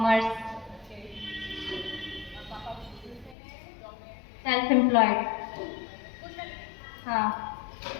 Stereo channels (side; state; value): right; drops out; at 3.4 s